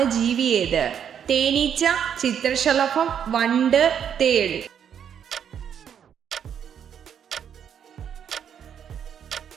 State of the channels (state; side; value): quieter; left; 8.5 dB